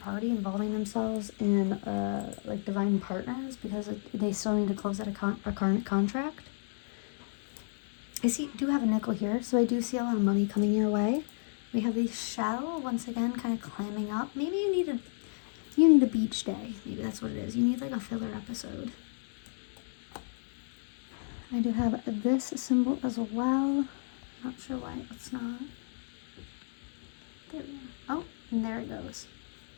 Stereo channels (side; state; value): right; silent; 56 dB below the other